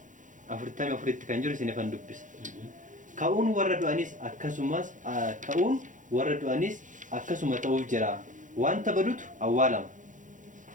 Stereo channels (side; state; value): left; late; 0.37 ms